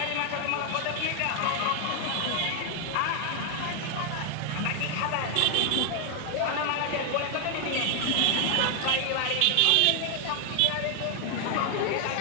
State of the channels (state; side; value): different; both; correlation 0.00